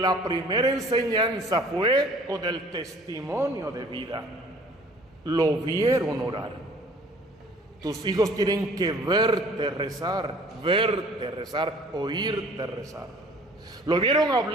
primera enseñanza fue con el testimonio de vida. Lo vieron orar. Tus hijos tienen que verte rezar, oírte rezar. Lo vieron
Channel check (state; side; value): normal; both; correlation 0.52